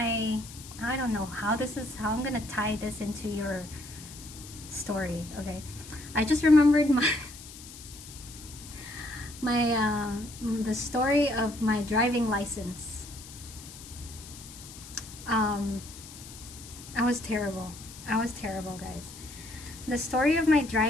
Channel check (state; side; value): noise; left; hiss, 16 dB below the sound